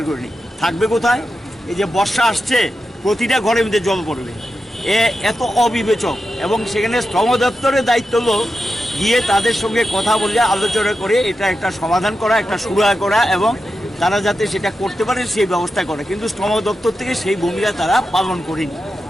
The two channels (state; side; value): normal; both; correlation 0.89